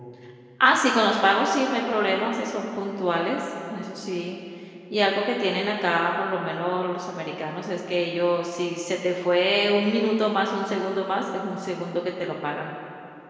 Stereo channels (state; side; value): identical; both; correlation 1.00